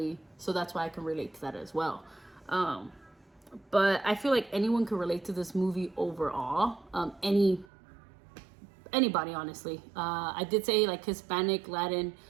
so that's why I can relate to that as well. But I feel like anyone can relate to this movie overall. Anybody, honestly. I did say like Hispanic, Latin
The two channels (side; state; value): left; drops out; at 7.7 s